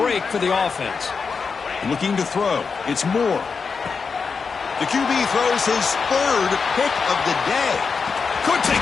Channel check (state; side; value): quieter; right; 5.3 dB